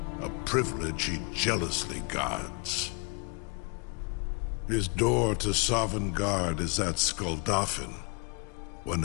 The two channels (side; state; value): right; quieter; 34.6 dB